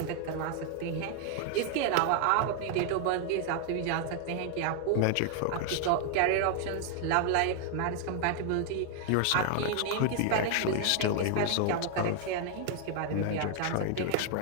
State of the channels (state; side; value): different; both; correlation 0.00